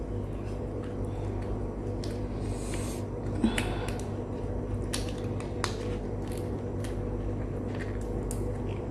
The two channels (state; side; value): identical; both; correlation 1.00